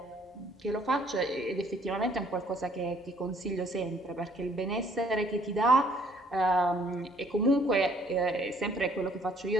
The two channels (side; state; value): both; normal; correlation 0.62